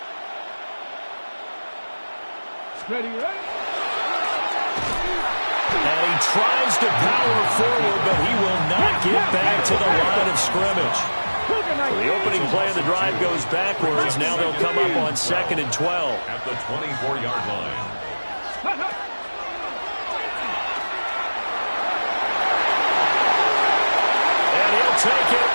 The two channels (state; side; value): inverted; both; correlation -1.00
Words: Ready, ready. And he tries to power forward, but he will not get back to the line of scrimmage. The opening play of the drive goes backwards. Now they'll come up on 2nd and 12. At the 24-yard line. And he'll take